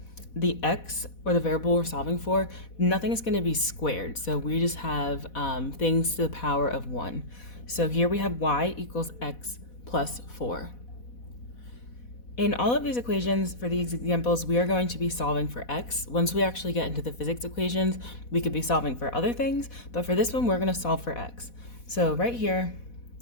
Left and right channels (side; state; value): right; late; 4.1 ms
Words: the x, or the variable we're solving for, nothing is going to be squared, so we just have things to the power of 1. So here we have y equals x plus 4. In all of these equations, for these examples, we are going to be solving for x. Once we actually get into the physics equations, we could be solving for other things, but for this one, we're going to solve for x. So right here,